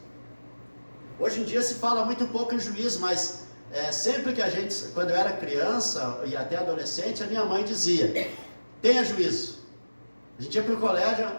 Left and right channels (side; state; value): both; inverted; correlation -1.00